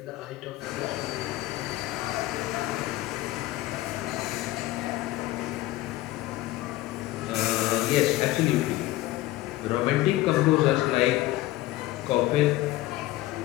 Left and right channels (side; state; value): right; quieter; 17.0 dB